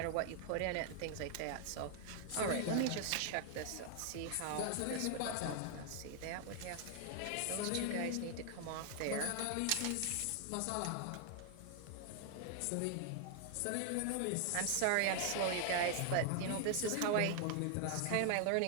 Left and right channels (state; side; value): different; both; correlation 0.00